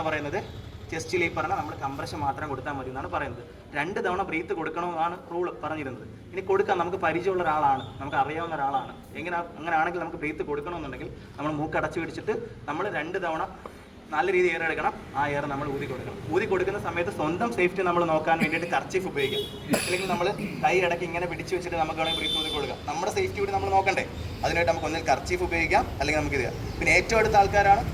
പറയുന്നത്? ചെസ്റ്റിൽ ഈ പറഞ്ഞാൽ നമ്മൾ കംപ്രഷൻ മാത്രം കൊടുത്താൽ മതി എന്നാണ് പറയുന്നത്. 2 തവണ ബ്രീത്ത് കൊടുക്കണമെന്നാണ് റൂൾ പറഞ്ഞിരുന്നത്. ഇനി കൊടുക്കാം, നമുക്ക് പരിചയമുള്ള ഒരാളാണ്, നമുക്ക് അറിയാവുന്ന ഒരാളാണ്, അങ്ങനെയാണെങ്കിൽ നമുക്ക് ബ്രീത്ത് കൊടുക്കണമെന്നുണ്ടെങ്കിൽ നമ്മൾ മൂക്ക് അടച്ചു പിടിച്ചിട്ട് നമ്മൾ 2 തവണ നല്ല രീതിയിൽ എയർ എടുക്കണം. ആ എയർ നമ്മൾ ഊതി കൊടുക്കണം. ഊതി കൊടുക്കുന്ന സമയത്ത് സ്വന്തം സേഫ്റ്റി നമ്മൾ നോക്കാൻ വേണ്ടിയിട്ട് കർച്ചീഫ് ഉപയോഗിക്കാം. അല്ലെങ്കിൽ നമ്മൾ കൈ ഇടയ്ക്ക് ഇങ്ങനെ പിടിച്ച് വെച്ചിട്ട് നമുക്ക് വേണമെങ്കിൽ ബ്രീത്ത് ഊതി കൊടുക്കാം. നമ്മുടെ സേഫ്റ്റി കൂടി നമ്മൾ നോക്കണ്ടേ? അതിനായിട്ട് നമുക്ക് ഒന്നിൽ കർച്ചീഫ് ഉപയോഗിക്കാം, അല്ലെങ്കിൽ നമുക്ക് ഇത് ചെയ്യാം. പിന്നെ ഏറ്റവും അടുത്ത ആൾക്കാരാണ്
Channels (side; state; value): both; identical; correlation 1.00